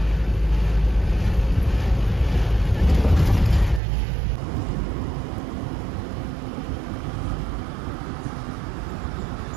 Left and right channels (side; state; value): left; drops out; at 3.8 s